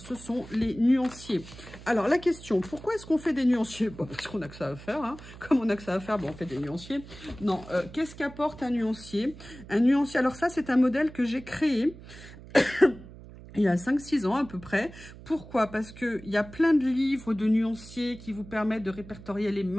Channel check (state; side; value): noise; right; hum, 17 dB below the sound